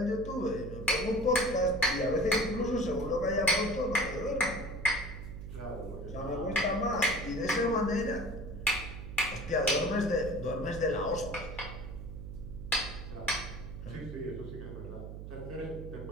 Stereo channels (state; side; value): noise; right; hum, 9 dB below the sound